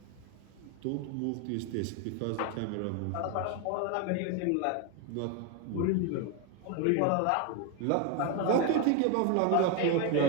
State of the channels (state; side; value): different; both; correlation 0.02